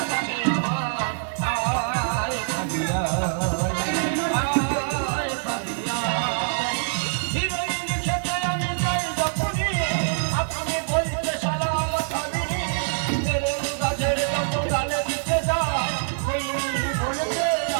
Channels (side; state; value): left; silent; digital silence